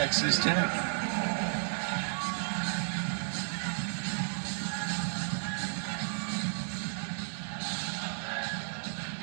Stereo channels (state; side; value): silent; left; digital silence